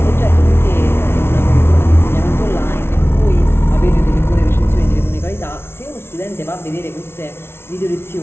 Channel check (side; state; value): right; late; 0.12 ms